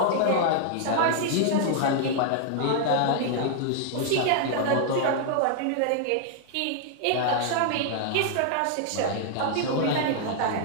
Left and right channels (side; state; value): both; different; correlation 0.00